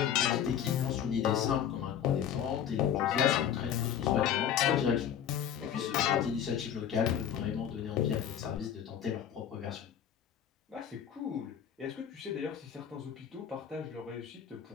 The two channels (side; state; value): right; quieter; 9.2 dB